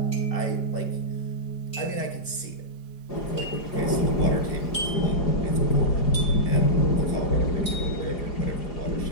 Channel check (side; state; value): right; late; 4.6 ms